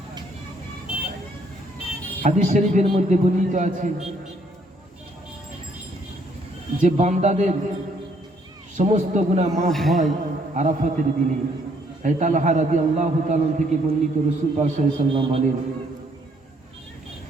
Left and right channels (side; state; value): both; normal; correlation 0.67